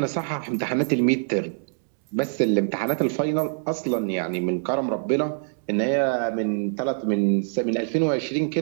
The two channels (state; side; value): silent; left; digital silence